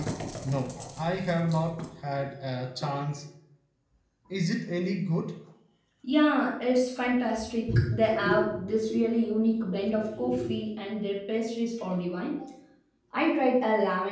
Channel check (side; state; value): both; identical; correlation 1.00